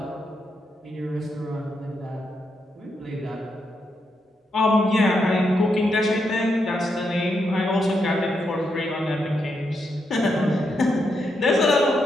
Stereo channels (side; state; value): both; normal; correlation 0.82